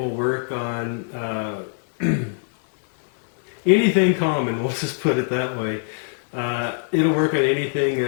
work on anything common, we'll just put it that way. It'll work on anything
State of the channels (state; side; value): silent; right; 63 dB below the other